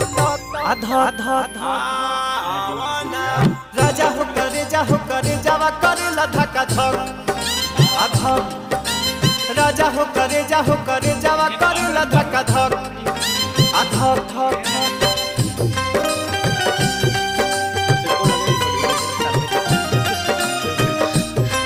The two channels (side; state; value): both; identical; correlation 1.00